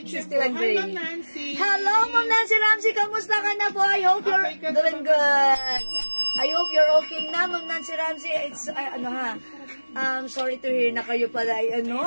61 gray. Hi, Ma'am Nancy. Hello, Ma'am Nancy Ramsey. Kamusta ka na po? I hope you're doing good. I hope you're okay na, Ma'am Nancy Ramsey. It's, sorry to hear na kayo pala,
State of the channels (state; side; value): inverted; both; correlation -1.00